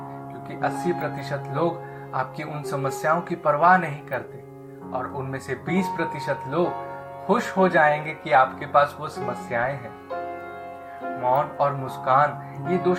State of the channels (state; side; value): identical; both; correlation 1.00